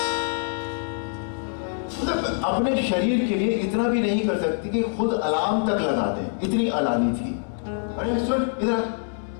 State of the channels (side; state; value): right; silent; 62 dB below the other